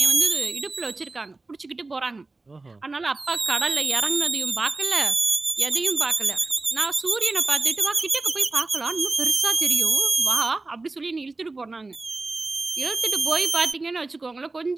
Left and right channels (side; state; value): left; quieter; 3.4 dB